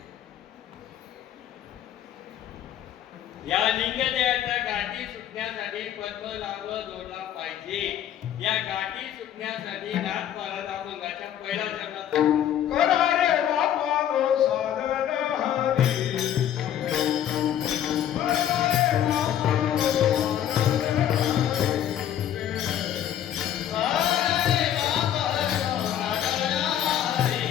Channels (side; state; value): right; quieter; 10.6 dB